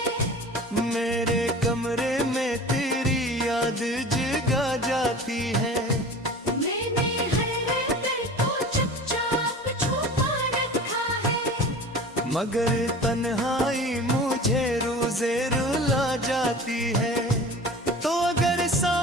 मेरे कमरे में तेरी याद जगा जाती है। मैंने हर दर को चुपचाप छुपा रखा है, मगर तन्हाई मुझे रोज़े रुला जाती है। तो अगर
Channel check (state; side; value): normal; both; correlation 0.39